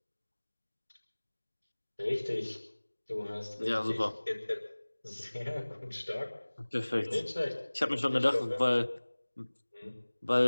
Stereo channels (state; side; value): inverted; both; correlation -1.00